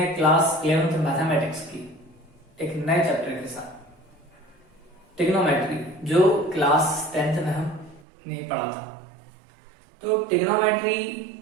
क्लास 11th मैथमेटिक्स की एक नए चैप्टर के साथ ट्रिग्नोमेट्री, जो क्लास 10th में हमने पढ़ा था। तो ट्रिग्नोमेट्री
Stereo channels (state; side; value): drops out; left; at 8.1 s